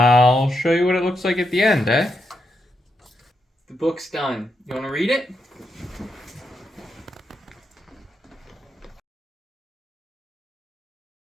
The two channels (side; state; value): both; normal; correlation 0.84